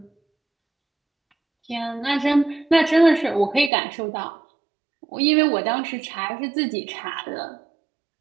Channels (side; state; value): left; drops out; at 3.7 s